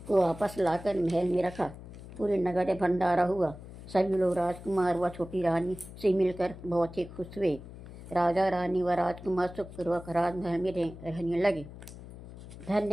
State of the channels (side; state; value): left; noise; hum, 15 dB below the sound